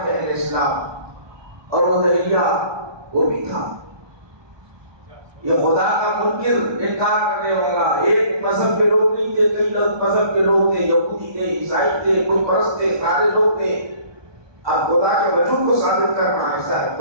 تھے اہل اسلام، اور وہ دہلیہ وہ بھی تھا، یہ خدا کا منکر انکار کرنے والا۔ ایک مذہب کے لوگ نہیں تھے، کئی مذہب کے لوگ تھے، یہودی تھے، عیسائی تھے، بت پرست تھے، سارے لوگ تھے۔ اب خدا کے وجود کو ثابت کرنا ایسا ہے،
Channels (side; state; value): left; late; 1.2 ms